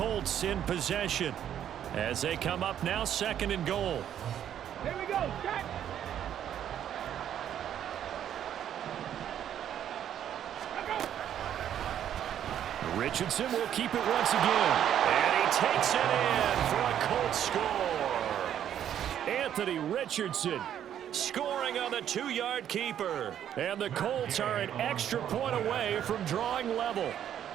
in possession as they come up now 2nd and goal. Here we go, set. Richardson will keep it once again. And he takes it in for a Colts score. Anthony Richardson scoring on the 2-yard keeper. And the Colts are an extra point away from drawing level.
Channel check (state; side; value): quieter; left; 10.1 dB